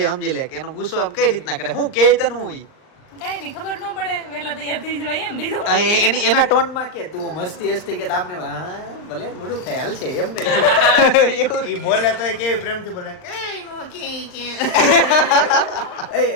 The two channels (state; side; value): late; right; 38 ms